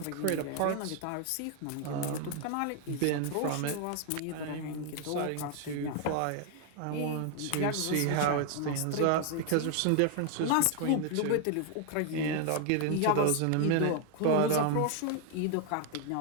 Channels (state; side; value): different; both; correlation 0.00